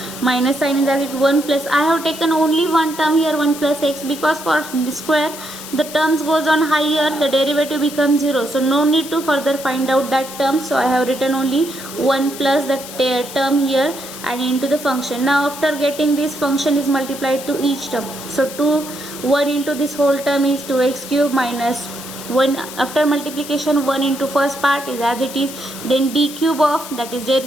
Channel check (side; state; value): left; noise; hiss, 12 dB below the sound